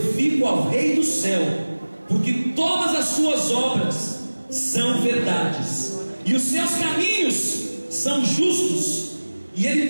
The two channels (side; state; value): both; inverted; correlation -1.00